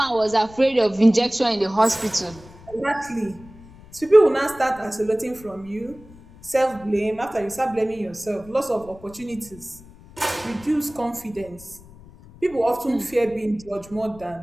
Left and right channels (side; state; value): left; noise; rumble, 21 dB below the sound